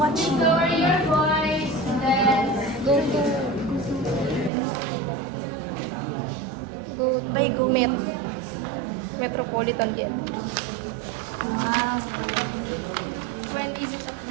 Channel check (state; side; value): drops out; left; at 4.5 s